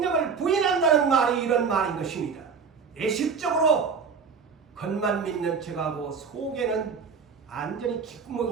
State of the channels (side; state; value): left; quieter; 5.7 dB